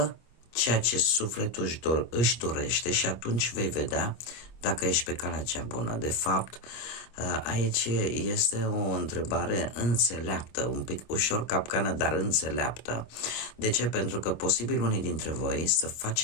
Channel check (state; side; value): late; right; 25 ms